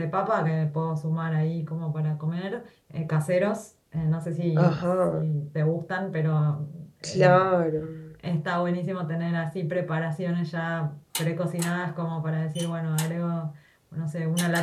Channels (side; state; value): both; identical; correlation 1.00